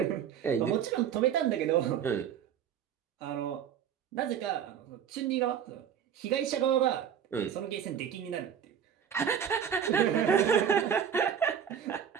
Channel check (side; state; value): left; quieter; 8.5 dB